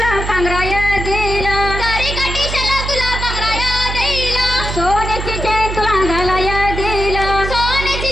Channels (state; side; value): noise; right; hum, 5 dB below the sound